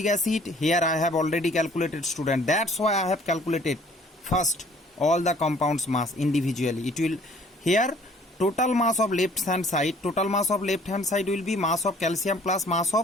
acid. Here I have already calculated, student. That's why I have calculated first all the compounds mass individually. It will here total mass of left hand side. Total mass of left hand side will be mass of calcium plus mass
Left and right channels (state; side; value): normal; both; correlation 0.56